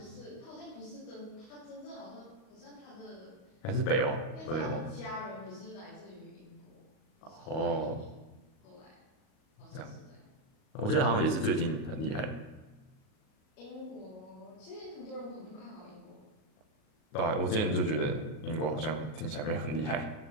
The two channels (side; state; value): right; late; 38 ms